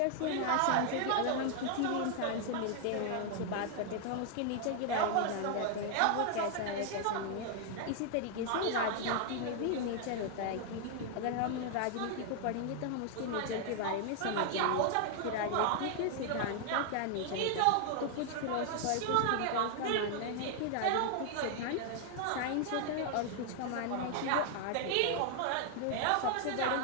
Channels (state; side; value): different; both; correlation 0.00